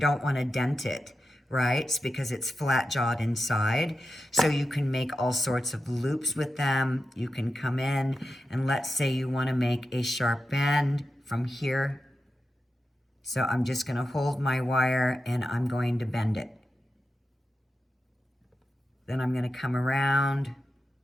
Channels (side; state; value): both; normal; correlation 0.90